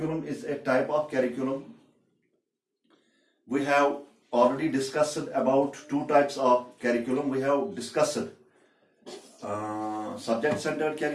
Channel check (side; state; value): both; identical; correlation 1.00